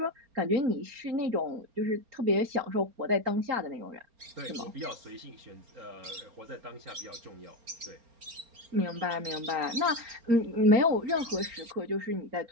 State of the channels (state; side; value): late; left; 4.3 ms